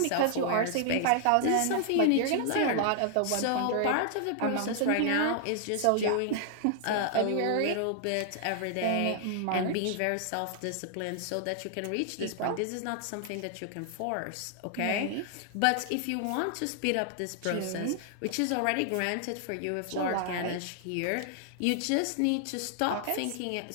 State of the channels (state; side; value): different; both; correlation 0.00